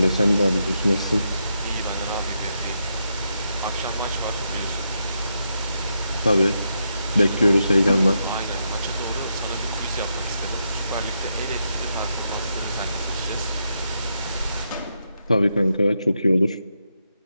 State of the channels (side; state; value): both; inverted; correlation -0.82